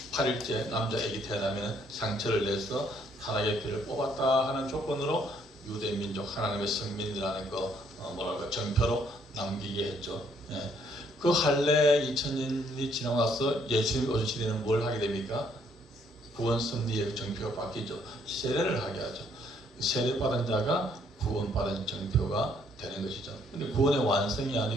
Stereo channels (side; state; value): both; normal; correlation 0.67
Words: 8일째 남자애기 태어나면 상처를 내서 타락의 피를 뽑았다 하는 조건으로 유대민족 하나님의 성민이라는 정표로 남기게 했죠. 예. 그 할례 2000년이 지나고 나서 예수님이 오신 시대는 뭘 하게 됩니까? 구원 섭리의 정표가 바뀌죠. 세례를 하게 하죠. 세례받은 자가 구원받은 정표가 되는 것이죠. 근데 구원의 완성이